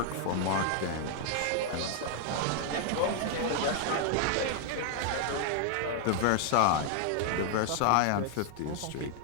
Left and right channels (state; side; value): different; both; correlation 0.00